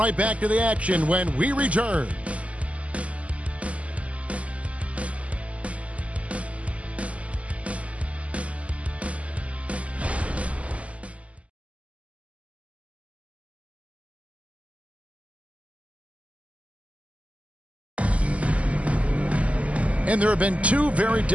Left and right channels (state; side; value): late; left; 0.066 ms